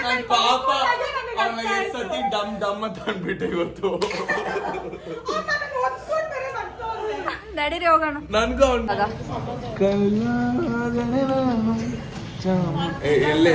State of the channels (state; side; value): identical; both; correlation 1.00